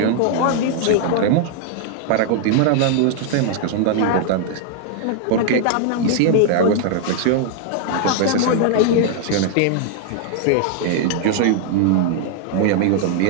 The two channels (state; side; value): different; both; correlation 0.00